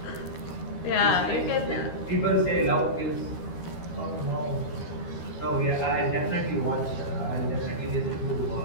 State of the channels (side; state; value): right; late; 13 ms